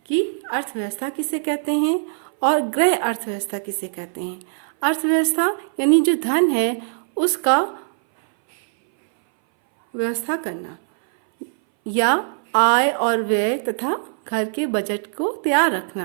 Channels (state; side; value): silent; left; 60 dB below the other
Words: कि अर्थव्यवस्था किसे कहते हैं और गृह अर्थव्यवस्था किसे कहते हैं। अर्थव्यवस्था यानी जो धन है उसका व्यवस्था करना या आय और व्यय तथा घर के बजट को तैयार